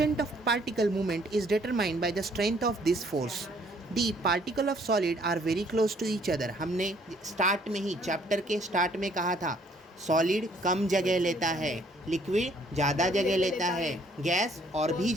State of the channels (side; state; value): both; normal; correlation 0.63